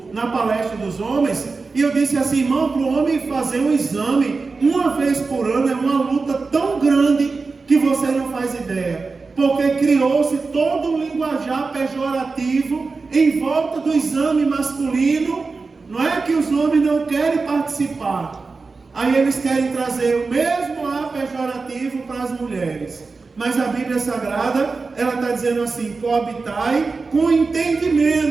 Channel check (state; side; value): quieter; left; 4.2 dB